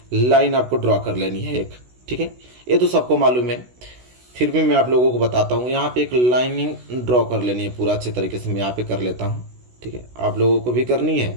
लाइन आपको ड्रॉ कर लेनी है एक। ठीक है, ये तो सबको मालूम है, फिर भी मैं आप लोगों को बताता हूँ। यहाँ पे एक लाइनिंग ड्रॉ कर लेनी है पूरा अच्छे तरीके से। मैं यहाँ पे कर लेता हूँ। ठीक है, आप लोगों को भी करनी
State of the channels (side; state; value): left; late; 16 ms